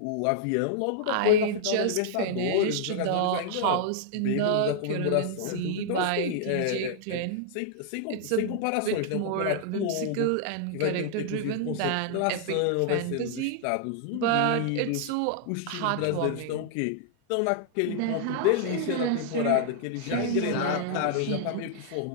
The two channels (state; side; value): different; both; correlation -0.01